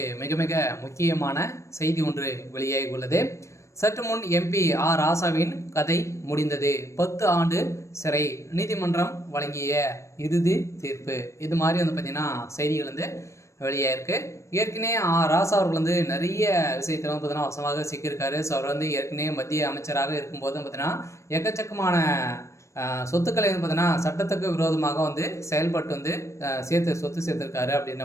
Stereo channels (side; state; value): right; late; 0.14 ms